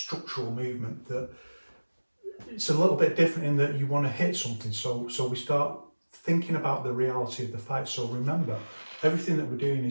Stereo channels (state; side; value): inverted; both; correlation -1.00